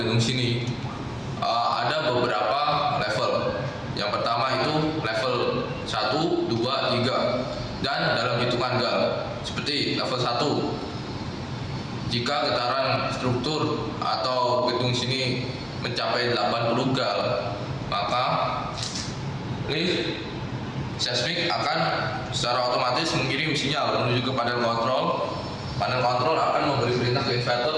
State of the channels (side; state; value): both; identical; correlation 1.00